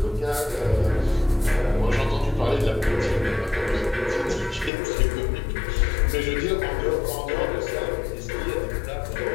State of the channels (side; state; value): right; drops out; at 4.7 s